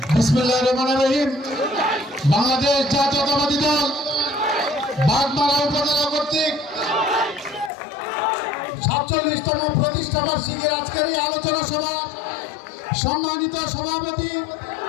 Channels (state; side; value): drops out; right; at 7.7 s